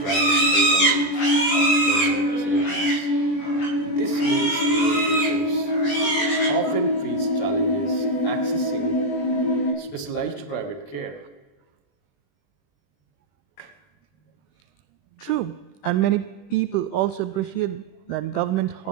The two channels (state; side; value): late; right; 20 ms